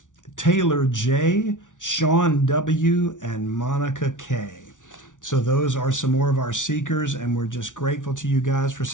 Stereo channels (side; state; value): right; late; 0.87 ms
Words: Taylor J., Sean W., and Monica K. So those are some more of our seekers, and we're just grateful to you guys for